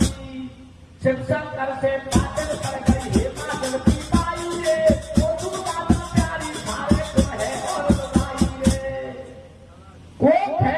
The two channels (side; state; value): both; identical; correlation 1.00